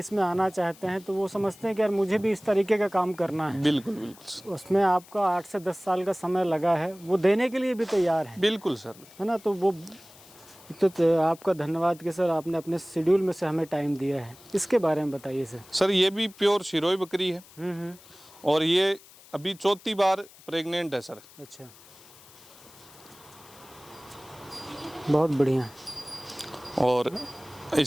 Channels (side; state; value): left; noise; hiss, 23 dB below the sound